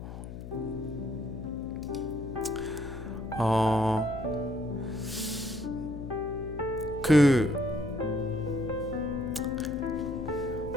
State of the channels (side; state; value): left; noise; hum, 10 dB below the sound